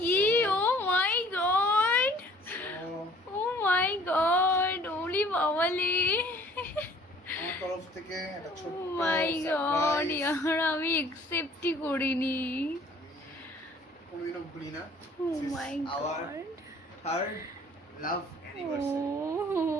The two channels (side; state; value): both; normal; correlation 0.54